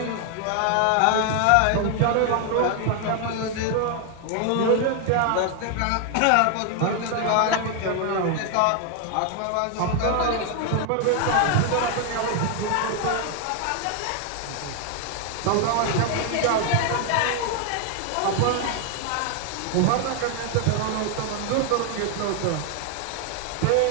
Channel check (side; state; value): both; different; correlation 0.01